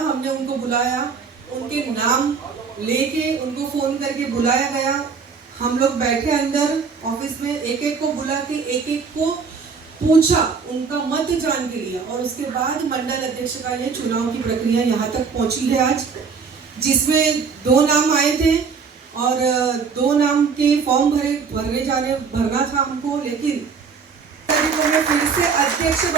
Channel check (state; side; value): quieter; left; 5.6 dB